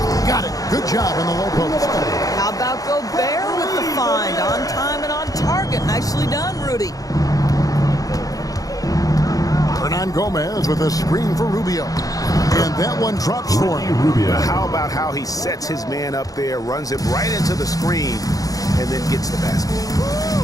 Got it. Good job in the low post. How about Gobert with the find? On time and on target. Nicely done, Rudy. Hernan Gomez with a screen for Rubio. And that one drops for him. How about how he sets his man up there, runs it right into the screen, and then gets the basket.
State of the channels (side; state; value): right; late; 0.17 ms